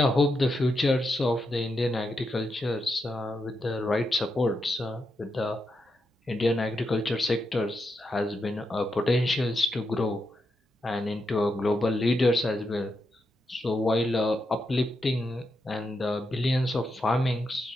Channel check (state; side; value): normal; both; correlation 0.85